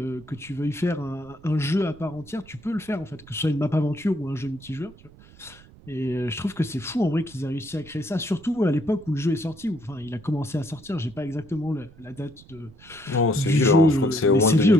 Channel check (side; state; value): right; noise; rumble, 22 dB below the sound